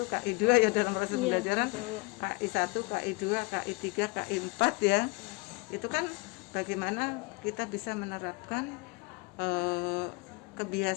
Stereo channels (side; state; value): right; quieter; 27.0 dB